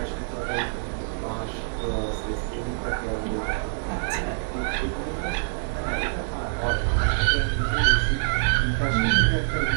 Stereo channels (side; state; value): left; silent; digital silence